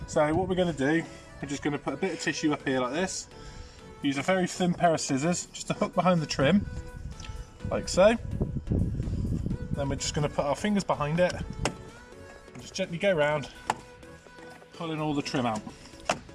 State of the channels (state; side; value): identical; both; correlation 1.00